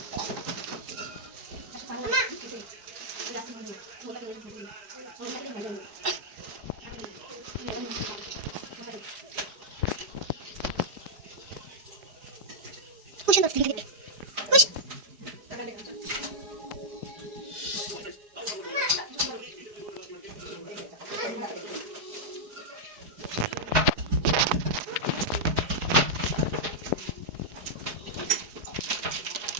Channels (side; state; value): left; late; 4.8 ms